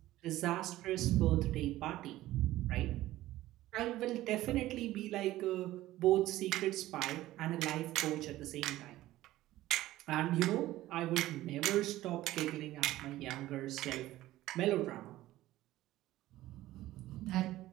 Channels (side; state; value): left; quieter; 15.7 dB